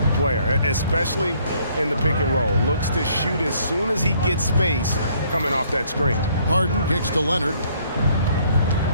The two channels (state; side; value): inverted; both; correlation -0.64